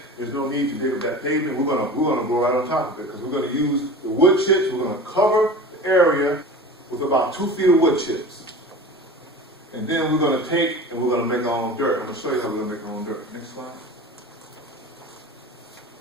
there's no need to dig up that pavement, we're gonna grow right on top of it because we're gonna use the wood chips, we're gonna cover the area with about 2 feet of wood chips. And then we're gonna take and we're gonna make our own dirt. I'm gonna show you how we're gonna make our own dirt. Next slide.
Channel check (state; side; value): normal; both; correlation 0.35